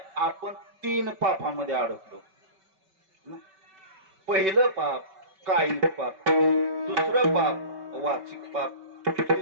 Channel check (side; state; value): left; late; 5.2 ms